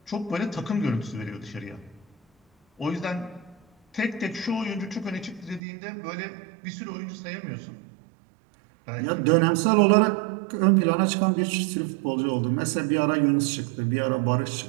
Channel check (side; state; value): left; drops out; at 5.6 s